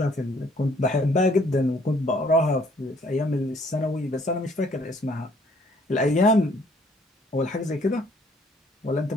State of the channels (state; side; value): normal; both; correlation 0.62